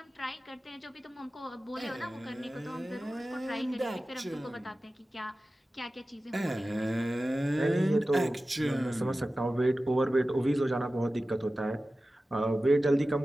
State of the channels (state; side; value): normal; both; correlation 0.95